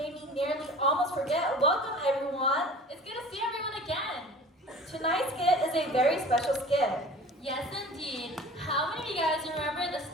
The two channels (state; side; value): normal; both; correlation 0.43